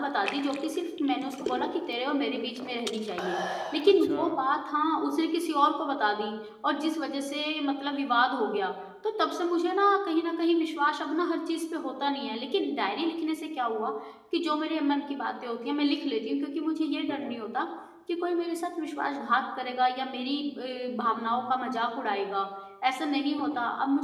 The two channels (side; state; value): both; identical; correlation 1.00